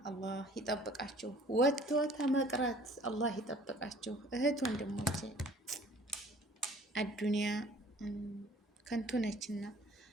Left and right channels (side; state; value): both; normal; correlation 0.52